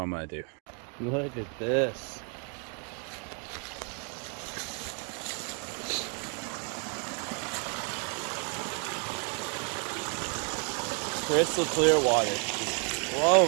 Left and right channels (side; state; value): left; quieter; 39.4 dB